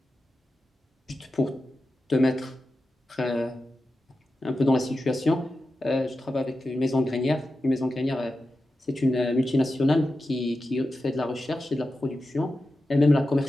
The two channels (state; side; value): normal; both; correlation 0.92